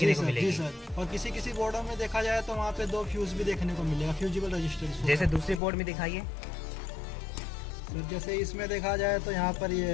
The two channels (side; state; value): right; drops out; at 5.6 s